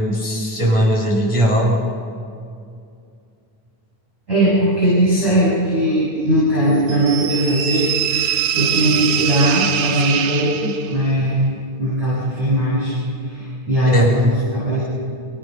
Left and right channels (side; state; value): left; late; 10 ms